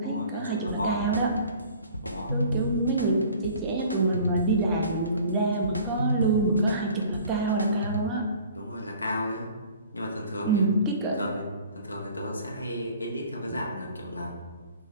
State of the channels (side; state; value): both; inverted; correlation -0.48